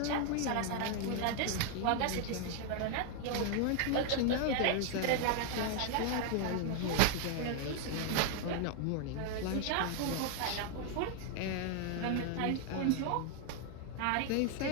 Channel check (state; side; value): different; both; correlation 0.00